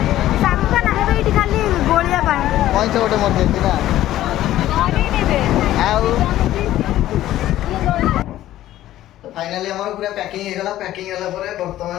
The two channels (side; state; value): right; quieter; 13.8 dB